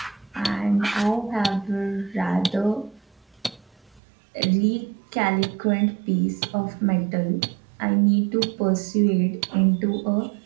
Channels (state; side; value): drops out; left; at 4.0 s